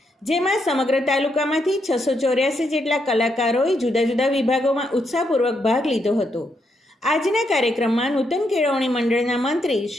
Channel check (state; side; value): normal; both; correlation 0.79